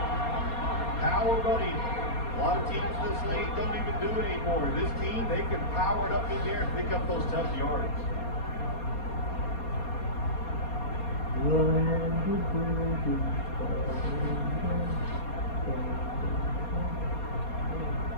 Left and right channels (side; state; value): right; late; 4.2 ms